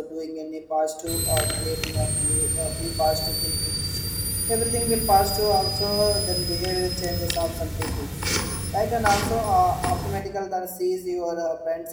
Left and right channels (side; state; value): both; identical; correlation 1.00